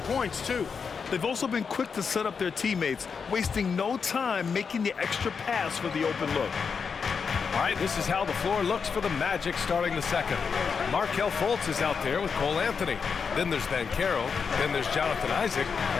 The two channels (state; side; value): quieter; right; 5.8 dB